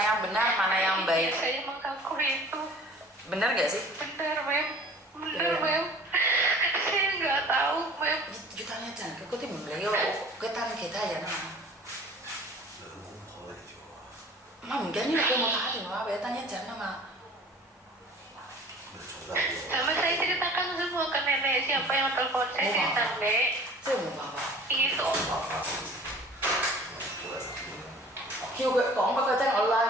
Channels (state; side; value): normal; both; correlation 0.47